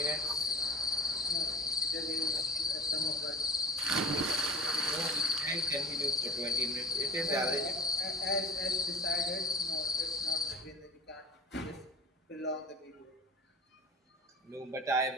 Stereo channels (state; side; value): normal; both; correlation 0.36